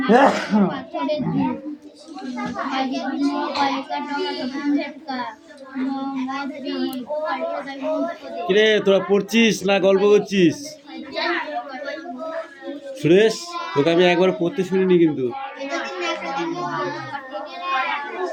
পাথরের কিরে তোরা পড়ছিস না গল্প করছিস? সুরেশ, তোকে আমি একবার পড়তে শুনিনি কিন্তু।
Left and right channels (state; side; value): identical; both; correlation 1.00